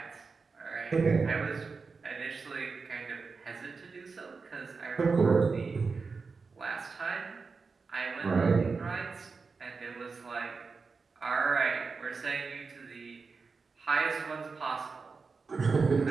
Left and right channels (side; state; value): left; quieter; 4.6 dB